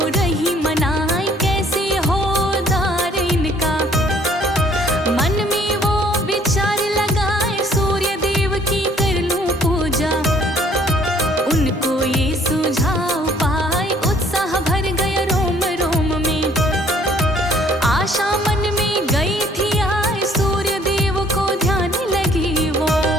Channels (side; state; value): both; normal; correlation 0.60